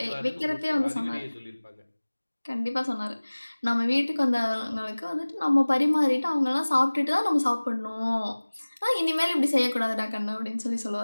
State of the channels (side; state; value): both; inverted; correlation -1.00